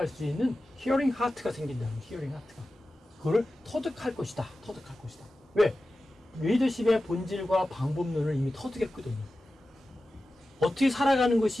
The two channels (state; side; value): normal; both; correlation 0.94